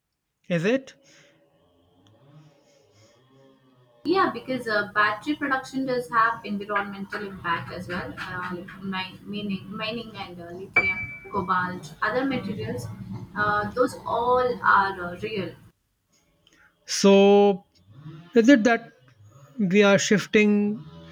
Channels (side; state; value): both; identical; correlation 1.00